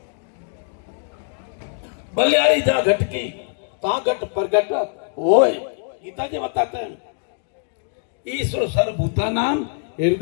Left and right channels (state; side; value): silent; right; digital silence